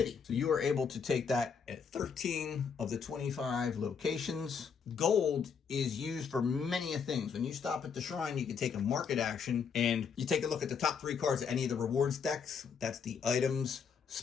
So you are able to take that at 13 of the 25 locations. Gold is used for many things. When you stop at the shrine, you can take a market action, and you take a look at the top 3 cards of any of the rewards decks. That's the items,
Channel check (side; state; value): right; quieter; 6.3 dB